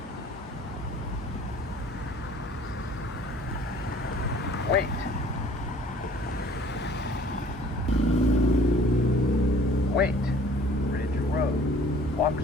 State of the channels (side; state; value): both; normal; correlation 0.52